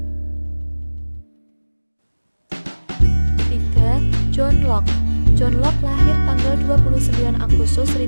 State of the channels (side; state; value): both; inverted; correlation -1.00